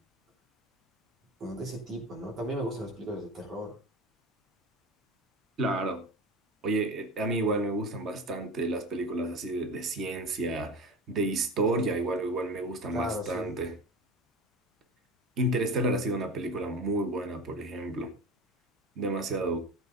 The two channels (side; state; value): both; normal; correlation 0.31